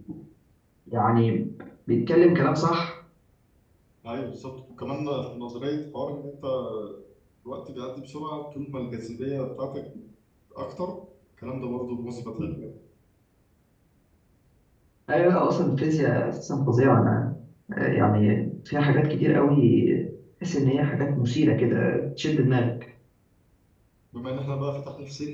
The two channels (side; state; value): both; identical; correlation 1.00